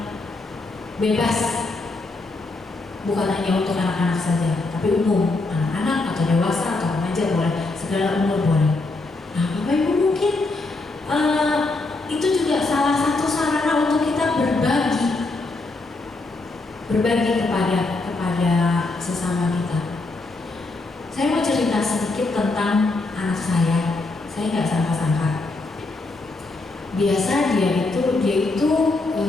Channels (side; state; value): right; quieter; 3.3 dB